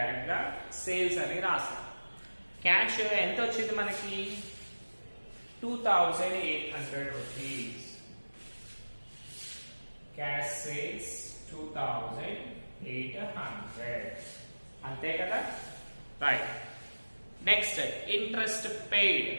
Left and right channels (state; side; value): inverted; both; correlation -1.00